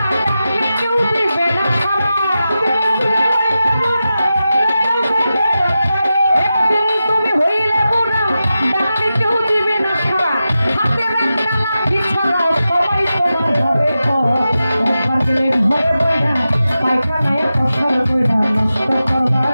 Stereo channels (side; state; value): both; inverted; correlation -0.92